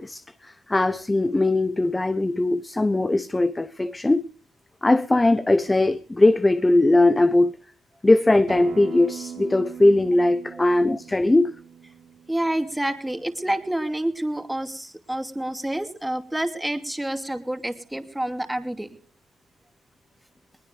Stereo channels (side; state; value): both; normal; correlation 0.98